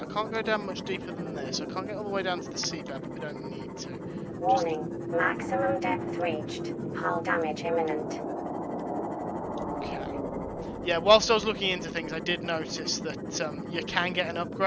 I can't go down much deeper than this. I can't get all the way down to the seabed, but we don't need to. Warning, maximum depth reached. Hull damage imminent. Okay. Yeah, whilst I was looking into things, I did notice that you can get an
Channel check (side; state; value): both; identical; correlation 1.00